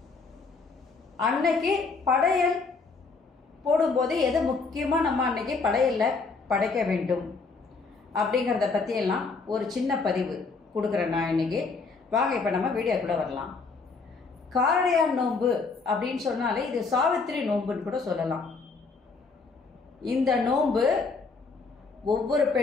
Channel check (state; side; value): quieter; right; 4.4 dB